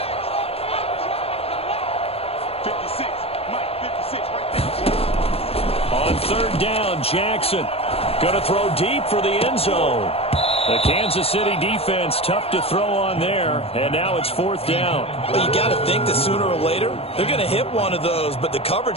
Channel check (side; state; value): right; late; 0.29 ms